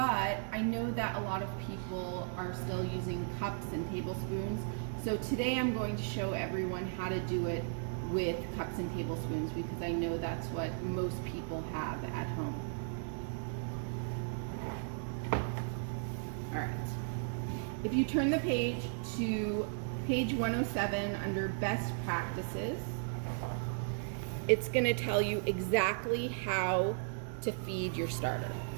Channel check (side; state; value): left; silent; digital silence